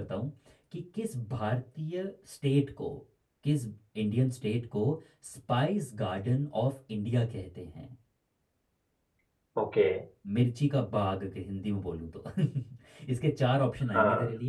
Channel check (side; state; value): both; identical; correlation 1.00